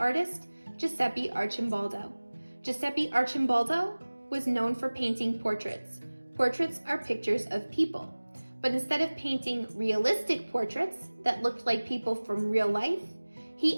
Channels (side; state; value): both; inverted; correlation -1.00